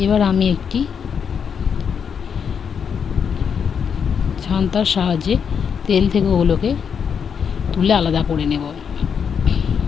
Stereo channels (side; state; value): right; quieter; 7.0 dB